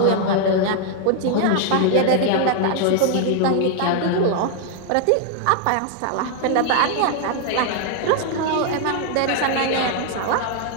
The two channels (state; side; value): different; both; correlation 0.00